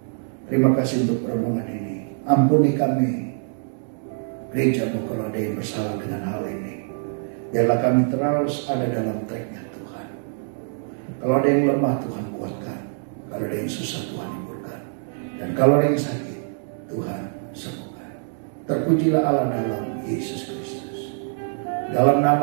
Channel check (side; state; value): left; silent; digital silence